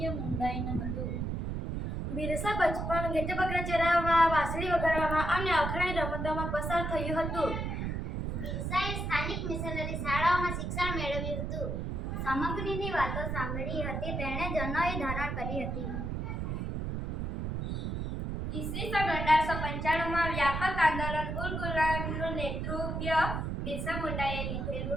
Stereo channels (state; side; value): noise; right; rumble, 3 dB below the sound